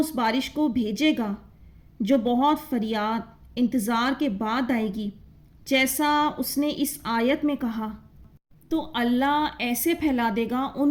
بارش کو بھیجے گا جو بہت فریاد انتظار کے بعد آئے گی، جیسا اس نے اس آیت میں کہا، تو اللہ ایسے پھیلا دے گا،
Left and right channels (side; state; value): both; identical; correlation 1.00